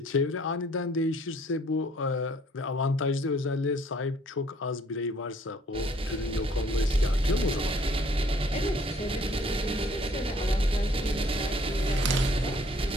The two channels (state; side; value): normal; both; correlation 0.60